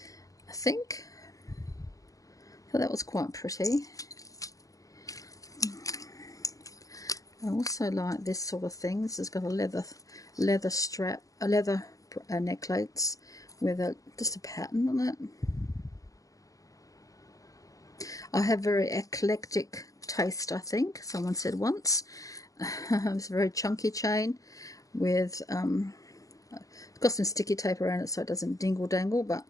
I think. So that was quite pretty. I also like this sort of thing. This has got a leather strap, a leather necklace with just a pattern on it. I have very eclectic taste, I think. Someone said once. It's a very chunky chain with it's got some sticky tape around it so it doesn't dingle dangle. But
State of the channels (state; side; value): late; right; 0.17 ms